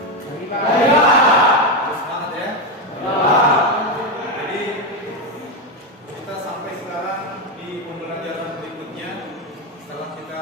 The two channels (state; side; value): normal; both; correlation 0.10